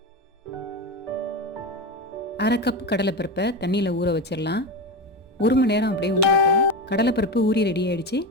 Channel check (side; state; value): both; normal; correlation 0.20